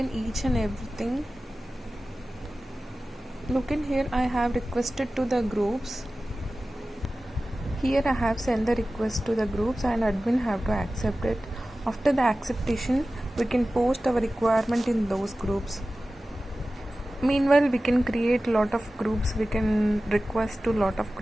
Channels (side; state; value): both; normal; correlation 0.96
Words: each and everything. Look in here, I have requested to the groups. Here I have sent the request to the groups and admin have to accept it. After the acceptation, we can post our requirement in those groups. Meanwhile, we can create lot of groups. We can request to lot of